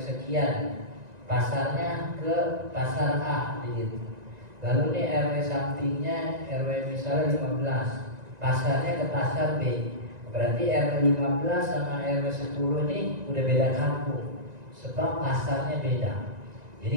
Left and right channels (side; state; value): left; late; 1.9 ms